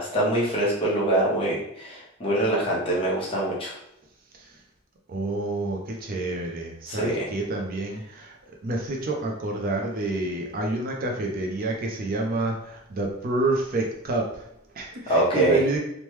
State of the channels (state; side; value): normal; both; correlation 0.31